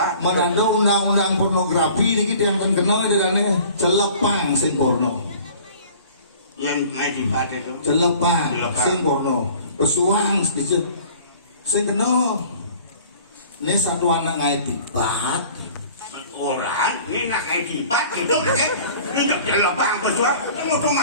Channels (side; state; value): both; inverted; correlation -0.48